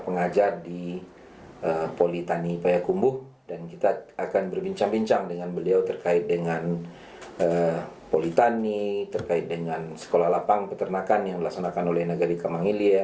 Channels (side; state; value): both; identical; correlation 1.00